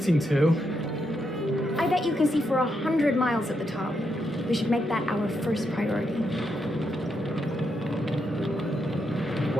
to. I bet you can see for 100 miles at the top. We should make that our first priority.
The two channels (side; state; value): both; normal; correlation 0.81